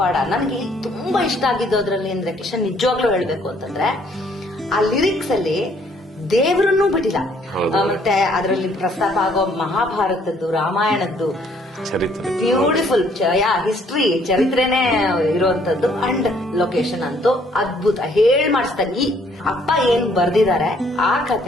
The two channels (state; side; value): normal; both; correlation 0.64